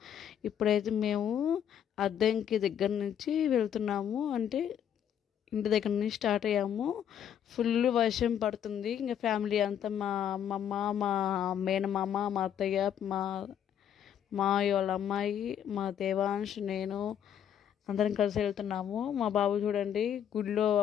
ఇప్పుడైతే మేము అద్దంకి దగ్గర నుంచి వెళ్తున్నాము, అంటే ఇంటి దగ్గర నుంచి స్టార్ట్ అయ్యాము. ఫుల్ వర్షం పడుతుంది. ఇంకా ఫ్యామిలీ అంతా మా అమ్మమ్మ, మా మేనమామ, మా అత్తయ్య, మా మావయ్య వాళ్ళ అమ్మాయి, మా దేవాంశ్, నేను అందరం కలిసి వెళ్తున్నాము. మా బాబు చూడండి గుడిలో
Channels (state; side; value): quieter; right; 9.3 dB